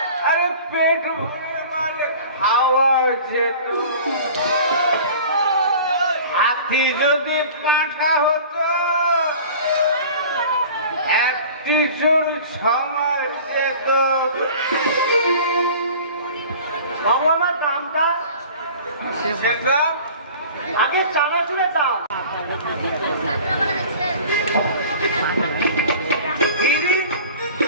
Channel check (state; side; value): inverted; both; correlation -0.43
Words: আরে পেট ভরে মানে খাওয়া যেত হাতি যদি পাঁঠা হতো একটি চোর 6 মাস যেত বাবু আমার দামটা সেটা আগে চানাচুরের দাম দিদি